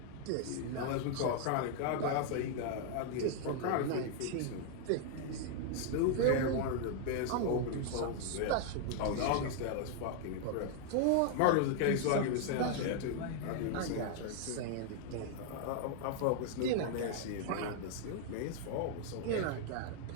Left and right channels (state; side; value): different; both; correlation 0.00